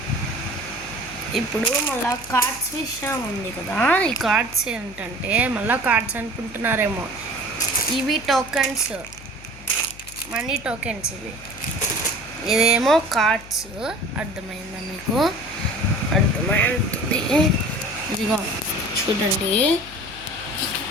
ఇప్పుడు మళ్ళీ కార్డ్స్ విషయం ఉంది కదా. ఈ కార్డ్స్ ఏంటంటే, మళ్ళీ కార్డ్స్ అనుకుంటున్నారేమో, ఇవి టోకెన్స్, మనీ టోకెన్స్ ఇవి. ఇదేమో కార్డ్స్. అర్థమైందా మీకు? అర్థమైంది. ఇదిగో చూడండి,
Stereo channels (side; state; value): left; noise; hum, 18 dB below the sound